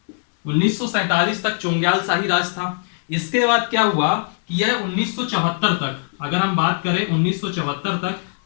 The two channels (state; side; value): silent; right; 65 dB below the other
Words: 1947 तक चोंग्याल शाही राज था। इसके बाद क्या हुआ कि यह 1974 तक, अगर हम बात करें 1974 तक,